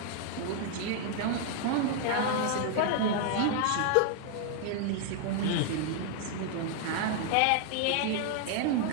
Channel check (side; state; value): both; different; correlation 0.00